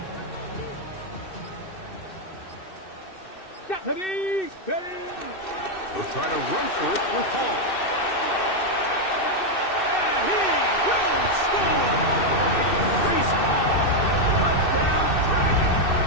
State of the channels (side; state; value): right; late; 2.6 ms